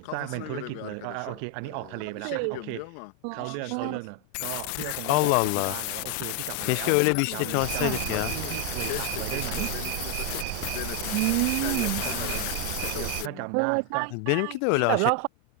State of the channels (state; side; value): different; both; correlation 0.01